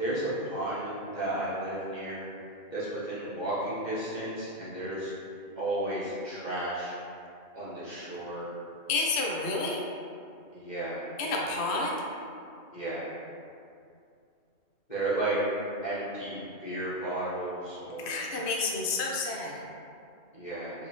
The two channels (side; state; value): right; late; 3.0 ms